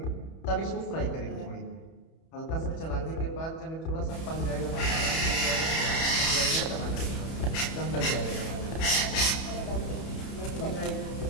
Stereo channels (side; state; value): right; late; 31 ms